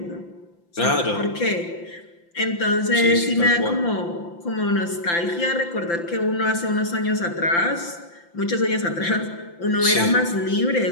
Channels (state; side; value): late; right; 5.8 ms